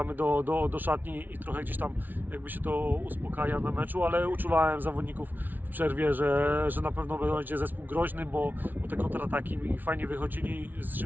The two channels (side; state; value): left; late; 0.084 ms